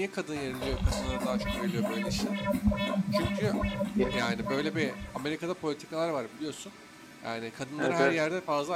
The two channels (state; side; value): identical; both; correlation 1.00